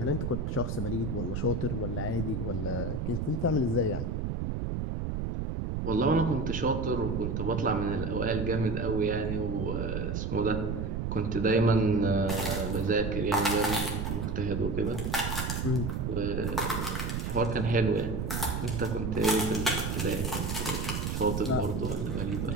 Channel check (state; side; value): noise; right; rumble, 2 dB below the sound